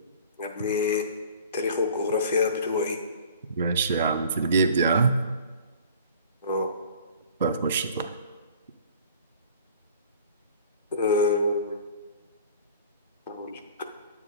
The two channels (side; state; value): both; inverted; correlation -0.47